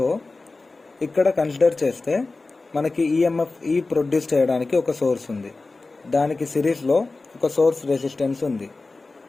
ఇక్కడ కన్సిడర్ చేస్తే మనకి ఈఎంఎఫ్ ప్రొడ్యూస్ చేయడానికి ఒక సోర్స్ ఉంది. దానికి సిరీస్లో ఒక సోర్స్ రెసిస్టెన్స్ ఉంది.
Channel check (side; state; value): right; quieter; 3.5 dB